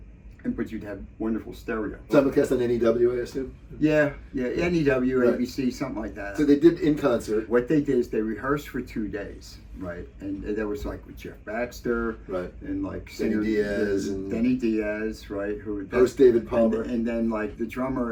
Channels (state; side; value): identical; both; correlation 1.00